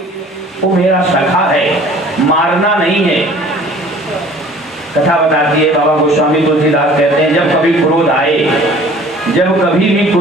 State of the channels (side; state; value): both; normal; correlation 0.50